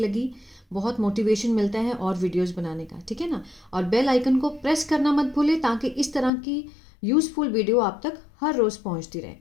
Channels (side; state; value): right; drops out; at 6.3 s